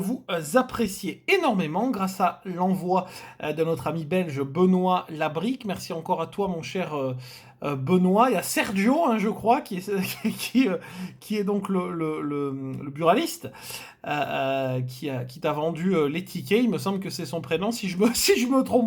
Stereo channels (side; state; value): both; identical; correlation 1.00